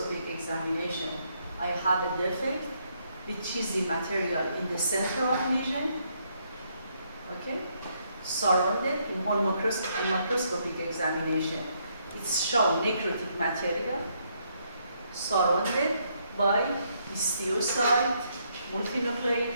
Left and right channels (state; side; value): inverted; both; correlation -0.74